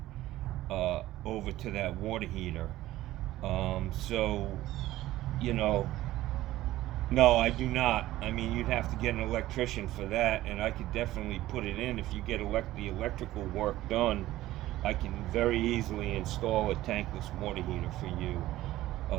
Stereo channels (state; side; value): quieter; left; 15.6 dB